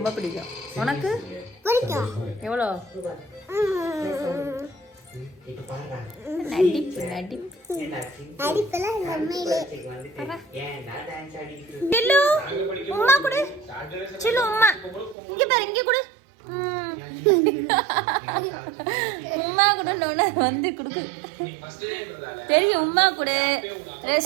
பிடிக்கும். உனக்கு எவ்வளோ? நடிப்பு நடிப்பு. சில்லு உம்மா கொடு. சில்லு உம்மா இங்க பாரு, இங்க கொடு. உம்மா கூட வந்து கொடுக்கு தெரியும். உம்மா கூட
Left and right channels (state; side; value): drops out; left; at 15.2 s